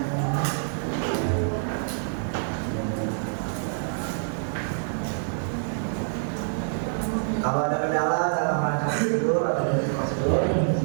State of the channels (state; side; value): silent; left; digital silence